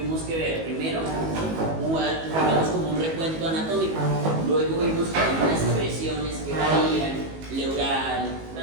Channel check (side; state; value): left; late; 19 ms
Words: que ver primero, digamos como un recuento anatómico, luego vimos que hay unas presiones que varían, pleural,